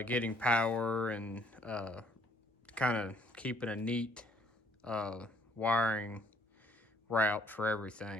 power and kind of keeping a neat wiring route for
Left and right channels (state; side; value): normal; both; correlation 0.63